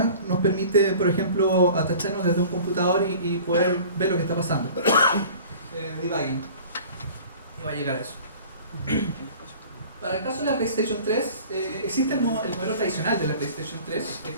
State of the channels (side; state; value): both; inverted; correlation -0.44